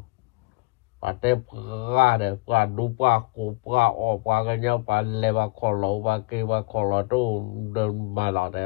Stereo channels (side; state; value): right; quieter; 24.5 dB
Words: và tế qua được qua đu qua cổ qua ọ qua cái nhau và lê vào khó lỗ và kê vào khó lỗ đồ đơn mà lọ